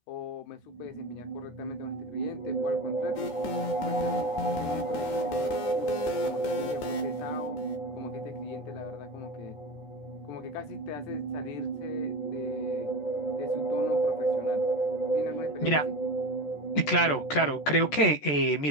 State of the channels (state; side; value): late; right; 14 ms